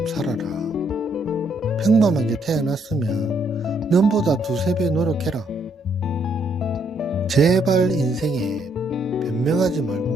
살아라. 평범하게 태어났으면 nom보다 두세 배 노력해라. 제발 인생에 변명하지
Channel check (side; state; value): both; normal; correlation 0.71